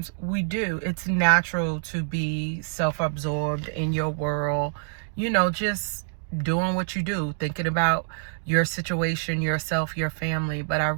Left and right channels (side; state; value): left; silent; digital silence